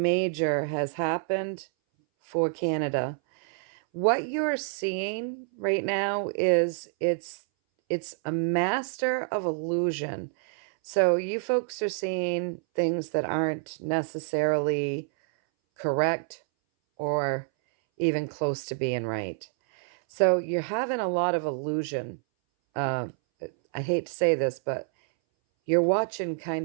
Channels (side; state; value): left; silent; 60 dB below the other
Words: major has happened for Canada. What you're seeing right now is it's a master of illusion. So you folks are seeing things that aren't necessarily correct or even close to being right. So you're having a lot of illusion. I hate to say this, but you're watching